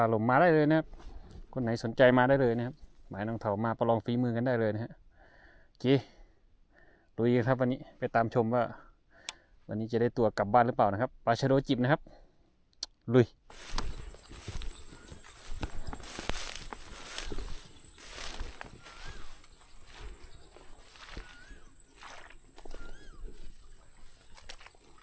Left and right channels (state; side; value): identical; both; correlation 1.00